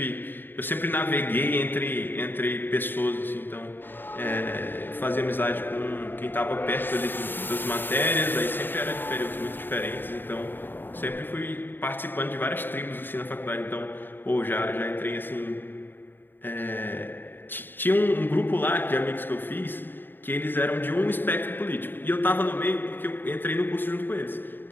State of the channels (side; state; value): right; late; 0.094 ms